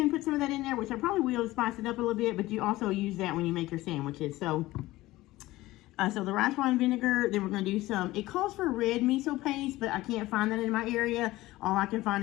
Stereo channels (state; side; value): quieter; right; 17.9 dB